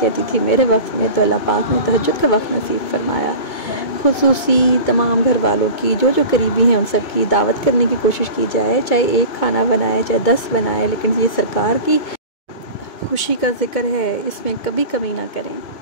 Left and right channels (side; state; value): right; late; 2.2 ms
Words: تھی میرے وقت میں، تو اللہ پاک نے تہجد کا وقت نصیب فرمایا۔ خصوصی تمام گھر والوں کی جو قریبی ہیں ان سب کی دعوت کرنے کی کوشش کی جائے، چاہے ایک کھانا بنائے چاہے 10 بنائے، لیکن یہ سرکار کی خوشی کا ذکر ہے، اس میں کبھی کمی نہ کریں۔